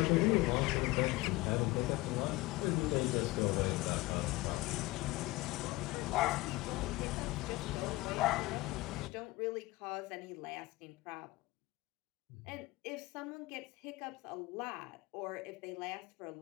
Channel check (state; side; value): quieter; right; 20.6 dB